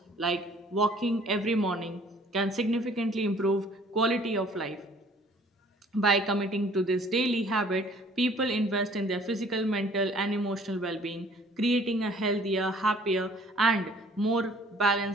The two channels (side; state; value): both; normal; correlation 0.56